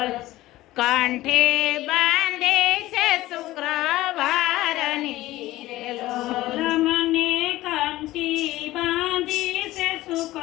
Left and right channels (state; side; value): quieter; right; 16.7 dB